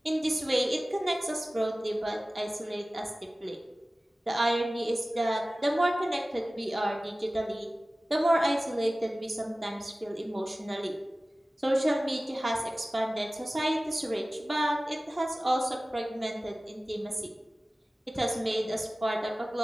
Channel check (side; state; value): both; normal; correlation 0.97